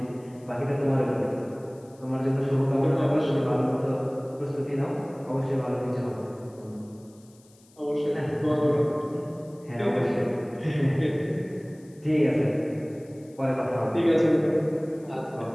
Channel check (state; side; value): noise; left; hiss, 29 dB below the sound